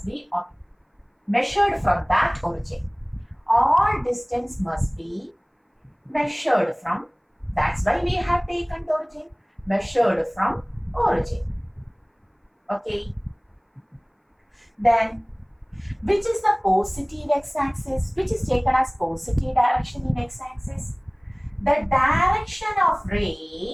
be measured from that origin. All distance must be measured from, that's why we have taken the origin, measured from origin. Okay. Then, which is the positive x-axis, which is taken as positive direction in x-axis? The direction of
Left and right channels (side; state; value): both; identical; correlation 1.00